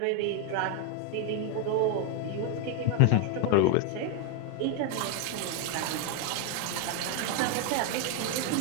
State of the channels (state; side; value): different; both; correlation 0.01